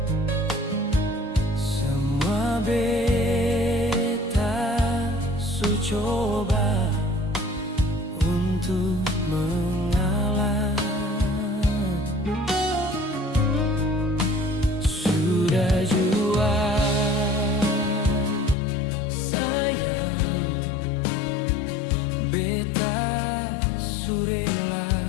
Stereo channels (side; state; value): right; drops out; at 18.6 s